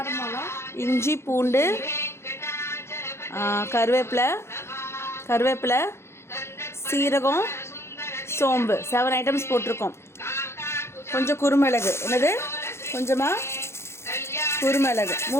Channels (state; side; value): late; right; 0.13 ms